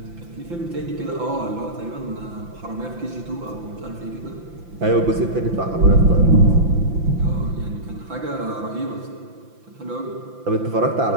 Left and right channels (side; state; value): left; late; 5.9 ms